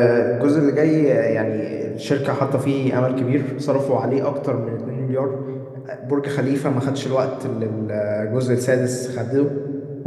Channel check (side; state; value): both; identical; correlation 1.00